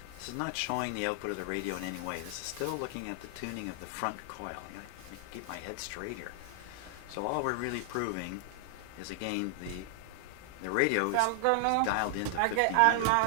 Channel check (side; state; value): both; different; correlation 0.00